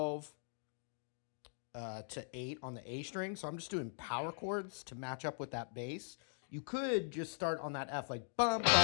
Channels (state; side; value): silent; right; digital silence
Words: to 8 on the A string. So I'm just doing power chords to match up with that bass. You could just start on that F like bum,